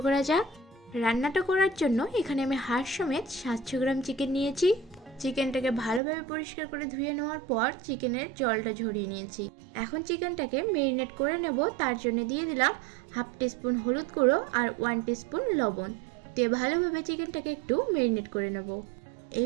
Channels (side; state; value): left; drops out; at 6.0 s